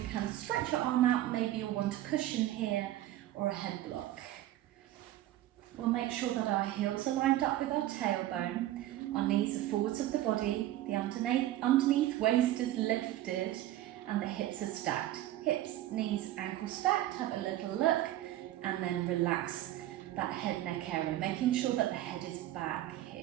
can stretch your arm out, maybe you'll want a cushion here or a head block. We'll make sure that our heels are lined up with our tailbone, our knees are forwards of the body, the underneath waist is lifted and the hips are stacked. Hips, knees, ankles stacked, have a little look, and then relax that head neck area, making sure that the head is back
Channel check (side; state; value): left; quieter; 14.2 dB